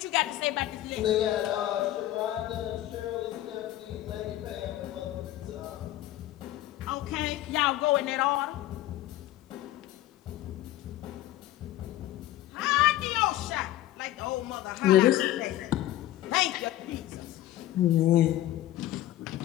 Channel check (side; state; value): right; quieter; 14.4 dB